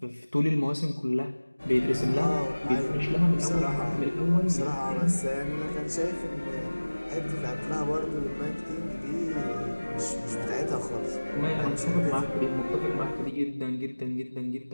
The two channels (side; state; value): both; inverted; correlation -1.00